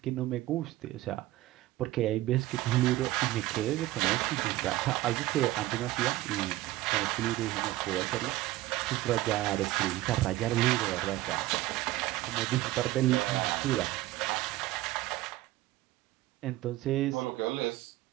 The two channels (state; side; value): quieter; left; 16.8 dB